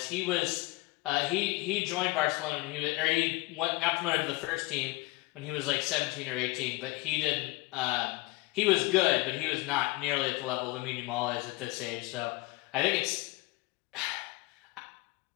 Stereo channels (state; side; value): quieter; right; 22.2 dB